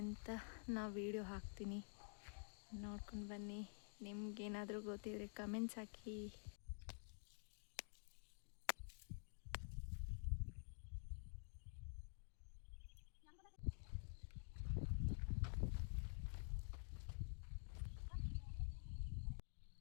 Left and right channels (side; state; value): right; silent; digital silence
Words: ಅಂತ ನಾವು ವಿಡಿಯೋ ಹಾಕ್ತೀನಿ, ನೋಡ್ಕೊಂಡು ಬನ್ನಿ. ನಿಮ್ಗೇನಾದರೂ ಗೊತ್ತಿದ್ರೆ ಕಮೆಂಟ್ಸ್ ಹಾಕಿ.